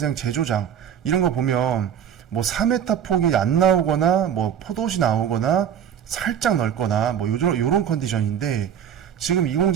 제조장 이런 거 보면 뭐 4m 폭이 안 나오거나 뭐 포도시 나오거나 살짝 넓거나 뭐 요런 컨디션인데 지금 이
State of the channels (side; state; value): left; quieter; 8.9 dB